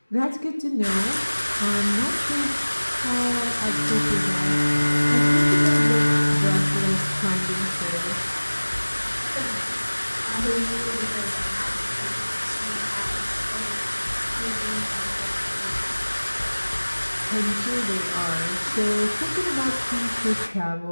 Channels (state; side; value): inverted; both; correlation -1.00